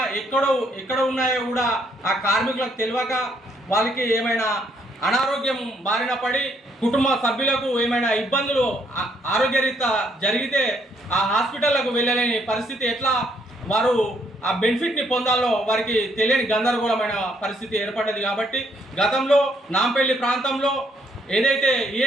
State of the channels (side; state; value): both; normal; correlation 0.70